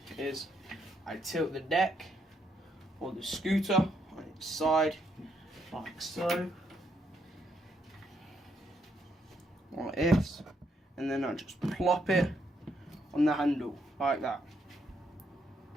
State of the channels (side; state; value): both; normal; correlation 0.75